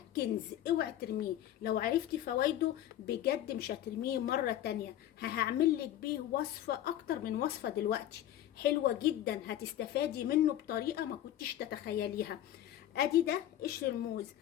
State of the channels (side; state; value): right; quieter; 12.2 dB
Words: كنز، اوعي ترميه. لو عرفتي فوائده بجد مش هترميه مره تانية. هعمل لك بيه وصفه اكتر من وصفه دلوقتي حلوه جدا، هتستفادي منه بطريقه ما كنتش تتخيليها. ادي ده قشر الموز،